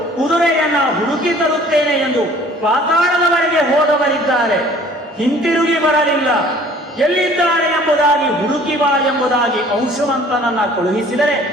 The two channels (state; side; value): normal; both; correlation 0.52